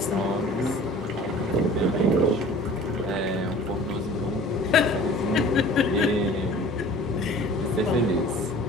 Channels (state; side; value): normal; both; correlation 0.45